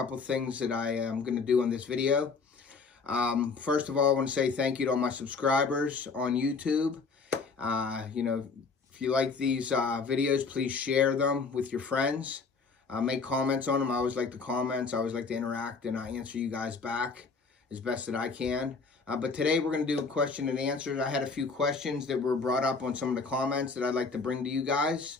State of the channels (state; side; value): quieter; right; 4.7 dB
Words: things that I am going to do on this video. First of all, I want to say thank you to all my subscribers on YouTube. If you like these videos, please share them with your friends. Make comments on them. I always like the comments. I always like to interact, and I answer you guys back as best that I can. But today we're going to do a question and answers. I had a few questions that were brought up on some of the comments that I'd like to bring to you guys.